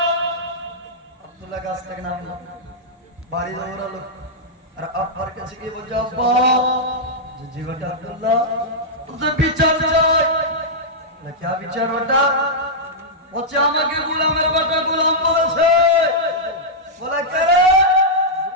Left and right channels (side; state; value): both; normal; correlation -0.08